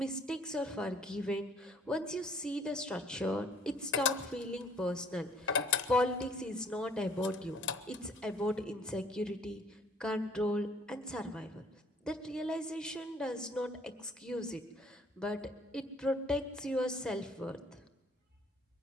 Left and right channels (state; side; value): normal; both; correlation 0.58